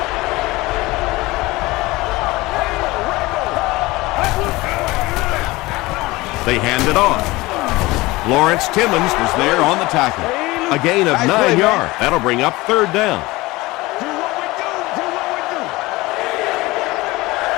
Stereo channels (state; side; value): quieter; right; 20.8 dB